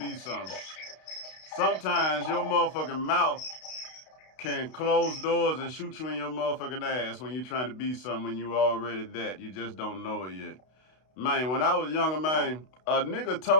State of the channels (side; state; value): right; late; 32 ms